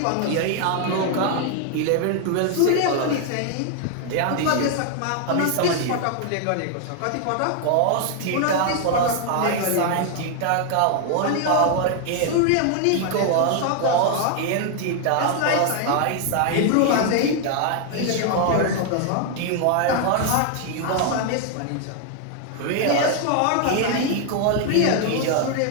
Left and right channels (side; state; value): both; different; correlation 0.00